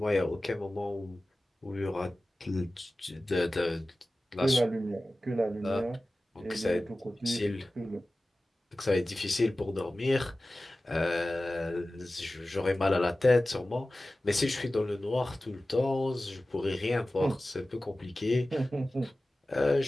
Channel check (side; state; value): both; normal; correlation 0.96